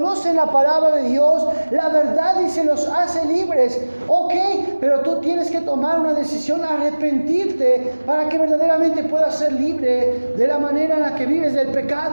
la palabra de Dios, la verdad dice, los hace libres. Ok, pero tú tienes que tomar una decisión, arrepentirte, para que verdaderamente puedas ser libre de la manera en la que vives del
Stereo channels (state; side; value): inverted; both; correlation -1.00